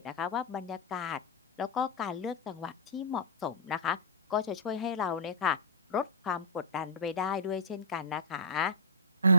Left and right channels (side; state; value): both; normal; correlation -0.15